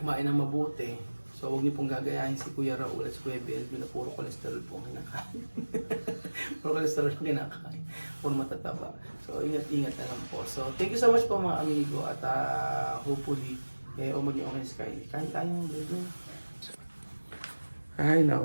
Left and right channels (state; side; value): inverted; both; correlation -1.00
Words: ng mabuti. So huwag niyo pong gagayahin si Kuya Raul at si Kuya Belvin na puro cholesterol po ang kinakain. Puro cholesterol ang kinakain. Puro matataba. So ingat-ingat na lang po. So thank you so much po mga amigo at hopefully maging okay si Kylie. Kain tayo ng Belvin. Ay